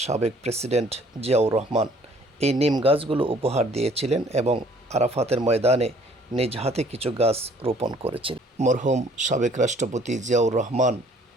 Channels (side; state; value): both; normal; correlation 0.57